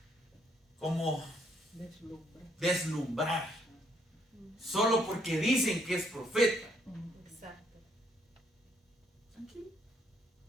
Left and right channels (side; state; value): both; normal; correlation 0.71